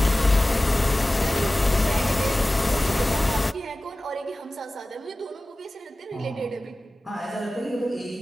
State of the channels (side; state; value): both; normal; correlation 0.96